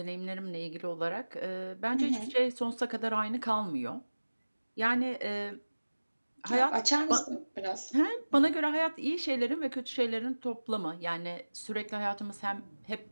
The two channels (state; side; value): inverted; both; correlation -1.00